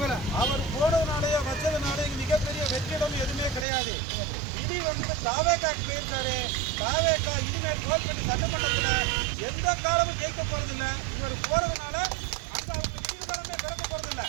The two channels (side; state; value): left; drops out; at 3.7 s